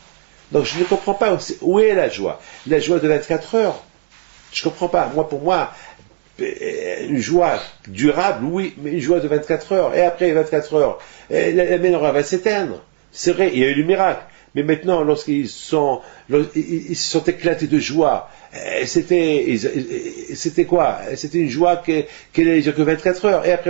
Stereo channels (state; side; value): silent; left; digital silence